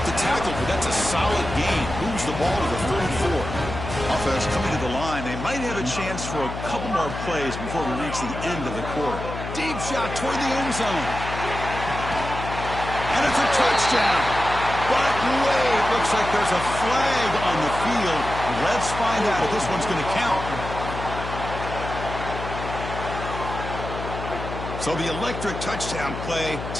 the tackle, but that's a solid gain. Moves the ball to the 34. Offense coming to the line. They might have a chance for a couple more plays before we reach the end of the quarter. Deep shot toward the end zone. And it's a touchdown. But wait, looks like there's a flag on the field. Let's find out if this one's going to count. So the electric touchdown play,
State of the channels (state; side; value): noise; left; hum, 7 dB below the sound